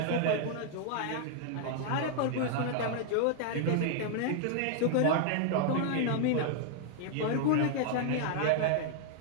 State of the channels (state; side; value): different; both; correlation 0.00